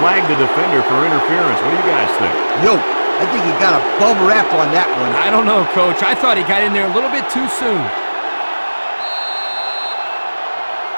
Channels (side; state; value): both; inverted; correlation -1.00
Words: the defender for interference. What do you guys think? Yo, I think he got a bum rap on that one. I don't know, Coach. I thought he got in there a little bit too soon.